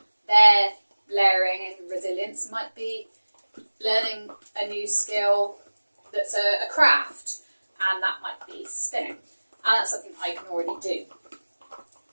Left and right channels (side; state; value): both; inverted; correlation -1.00